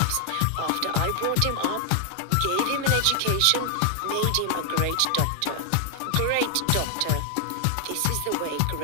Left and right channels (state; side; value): different; both; correlation 0.00